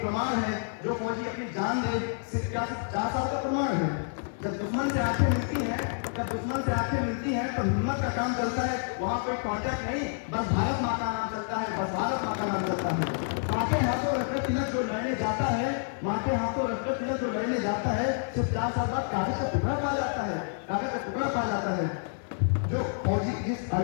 प्रमाण है। जो फौजी अपनी जान दे सिर्फ 4 साल का प्रमाण है। जब दुश्मन से आंखें मिलती हैं तो हिम्मत का काम चलता है। वहाँ कोई कॉन्ट्रैक्ट नहीं, बस भारत माँ का नाम चलता है, बस भारत माँ का नाम चलता है। माँ के हाथों रक्त तिलक जो लड़ने जाता है, माँ के हाथों रक्त तिलक जो लड़ने जाता है, सिर्फ 4 साल बाद कागज का टुकड़ा पा जाता है, कागज का टुकड़ा पा जाता है। जो फौजी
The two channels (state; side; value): silent; right; digital silence